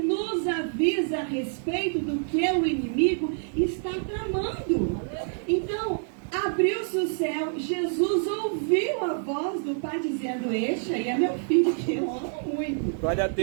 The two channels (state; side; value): silent; left; digital silence